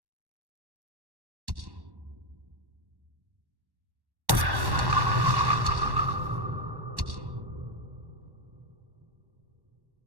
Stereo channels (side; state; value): left; late; 1.1 ms